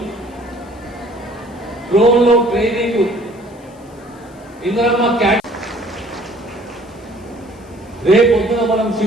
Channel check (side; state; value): left; noise; hiss, 29 dB below the sound